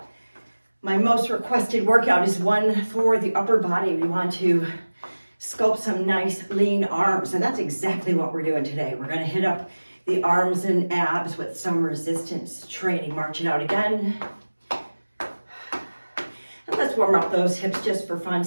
My most requested workout is one for the upper body. We want to sculpt some nice lean arms and that's exactly what we're doing today. We're gonna hit up the arms and abs with some resistance training. March it out again. And let's warm up those hips just for fun.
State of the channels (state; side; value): inverted; both; correlation -1.00